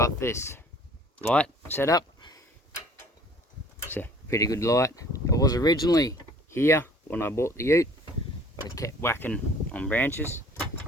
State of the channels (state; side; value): normal; both; correlation 0.52